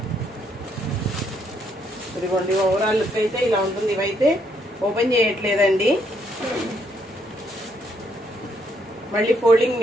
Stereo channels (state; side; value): normal; both; correlation 0.72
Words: ఇదిగోండి ఓవరాల్ లుక్ అయితే ఇలా ఉంటుంది. ఇవైతే ఓపెన్ చేయట్లేదండి, మళ్ళీ ఫోల్డింగ్